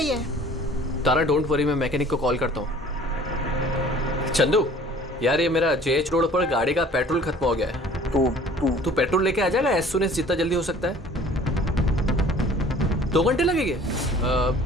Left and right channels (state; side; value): normal; both; correlation 0.50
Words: है। तारा डोंट वरी, मैं मैकेनिक को कॉल करता हूँ। चंदू यार, ये मेरा जेएच रोड पर गाड़ी का पेट्रोल खत्म हो गया है। तू पेट्रोल लेके आ जाएगा एज सून एज जितना जल्दी हो सकता है। 2 घंटे लगेंगे।